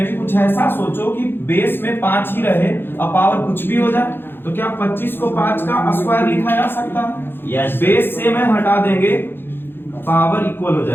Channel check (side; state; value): right; late; 0.10 ms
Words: भी कुछ ऐसा सोचो कि बेस में 5 ही रहे और पावर कुछ भी हो जाए। तो क्या 25 को 5 का स्क्वायर लिखा जा सकता है? Yes. बेस से में हटा देंगे, पावर इक्वल हो